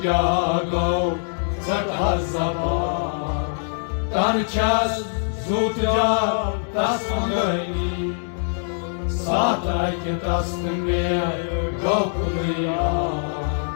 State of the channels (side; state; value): right; silent; 63 dB below the other